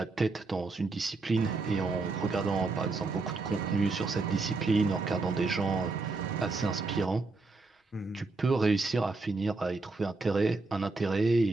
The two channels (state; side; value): quieter; left; 3.7 dB